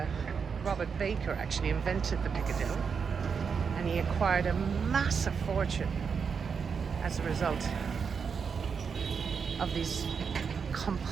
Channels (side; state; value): left; quieter; 6.1 dB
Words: Robert Baker actually invented the Piccadilly, and he acquired a massive fortune as a result of these